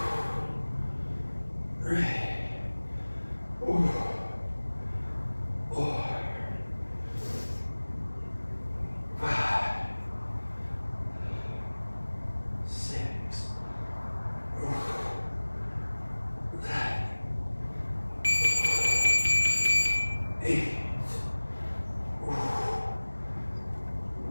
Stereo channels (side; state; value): both; inverted; correlation -1.00